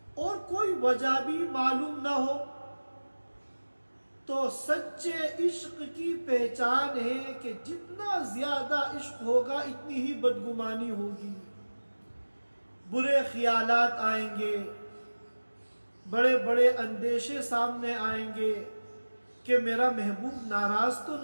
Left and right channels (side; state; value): both; inverted; correlation -1.00